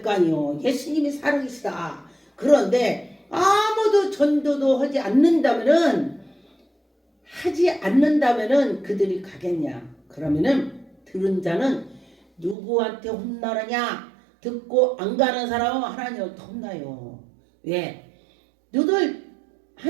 거 아니요. 예수님이 살아계시다. 그런데 아무도 전도도 하지 않는다면은 그들이 가겠냐? 그러면은 들은 자는 누구한테 혼나느냐? 듣고 안 가는 사람은 하나님한테 혼나요. 왜? 너들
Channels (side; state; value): left; drops out; at 12.6 s